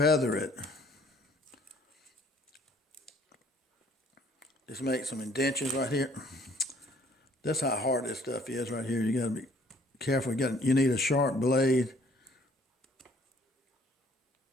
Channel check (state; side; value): normal; both; correlation 0.59